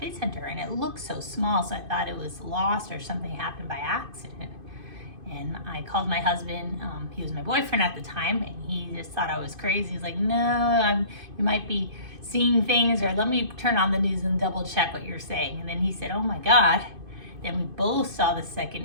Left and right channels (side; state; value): left; late; 2.5 ms